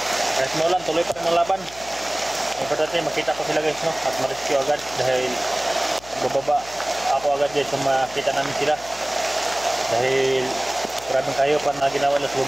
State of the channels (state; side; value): noise; left; hum, 20 dB below the sound